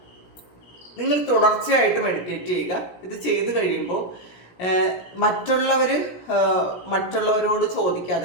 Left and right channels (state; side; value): late; right; 17 ms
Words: നിങ്ങൾ തുടർച്ചയായിട്ട് മെഡിറ്റേറ്റ് ചെയ്യുക. ഇത് ചെയ്ത് കഴിയുമ്പോൾ മറ്റുള്ളവരോട് ചോദിക്കാതെ,